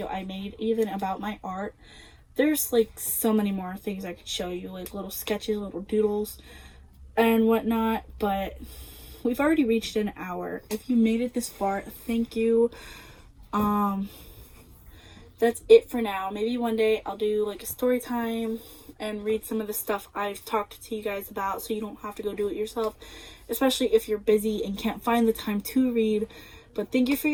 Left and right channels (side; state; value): both; identical; correlation 1.00